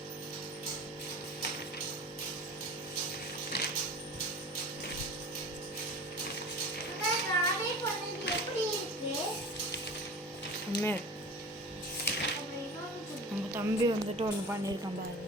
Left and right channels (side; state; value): both; normal; correlation 0.37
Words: நம்ம தம்பி வந்துட்டு ஒன்று பண்ணியிருக்கான் பாருங்க.